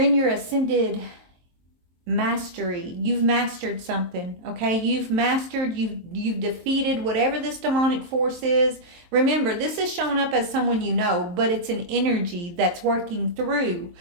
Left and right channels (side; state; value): left; late; 23 ms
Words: your ascended mastery. You've mastered something. Okay, you've defeated whatever this demonic force is. Remember, this is showing up as someone you know, but it's an energy that's working through